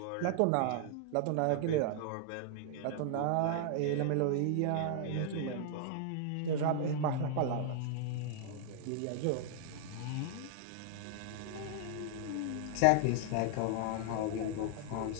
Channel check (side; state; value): both; different; correlation -0.01